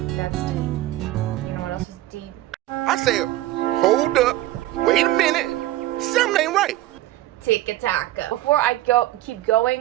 That's deep. You know what else is deep? I said, hold up, wait a minute, something ain't right. Tic-a-taca. Before I keep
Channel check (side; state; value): left; quieter; 15.6 dB